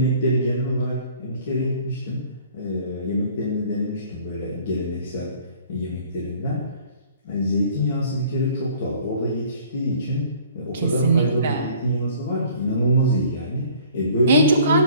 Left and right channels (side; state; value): both; inverted; correlation -0.53